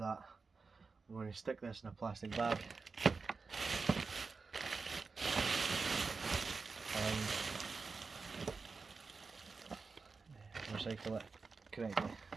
I'm going to stick this in a plastic bag and recycle it correctly.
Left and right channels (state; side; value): quieter; left; 4.5 dB